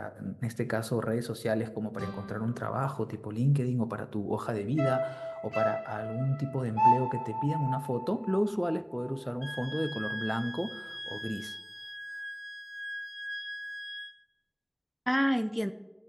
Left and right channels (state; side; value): identical; both; correlation 1.00